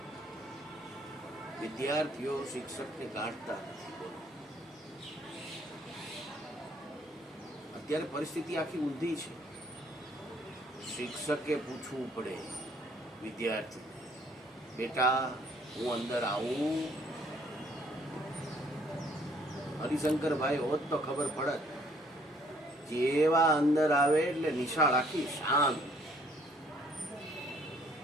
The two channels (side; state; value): both; normal; correlation 0.63